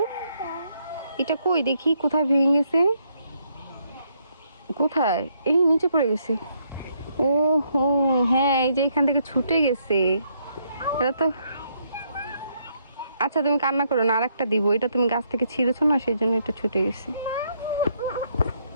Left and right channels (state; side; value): inverted; both; correlation -0.73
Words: এটা কই দেখি, কোথায় ভেঙে গেছে? কোথায়? এই নিচে পড়ে গেছে। ও হো, হ্যাঁ, এই যে এখান থেকে ছুটে গেছে। এটা তো আচ্ছা, তুমি কান্না করো না, আরেকটা দিব। এটা তুমি গাছ থেকে ছিঁড়েছো না, সেই জন্য এটা ছুটে গেছে।